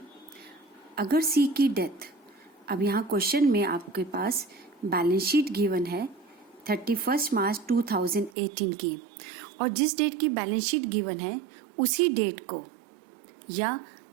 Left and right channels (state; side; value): drops out; left; at 8.3 s